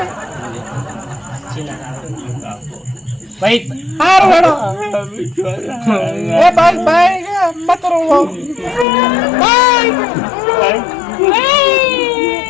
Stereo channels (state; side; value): drops out; right; at 8.8 s